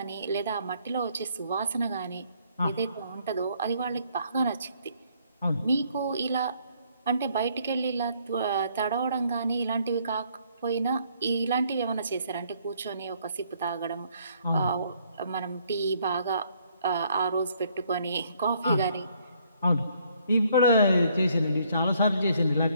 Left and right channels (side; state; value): both; inverted; correlation -0.66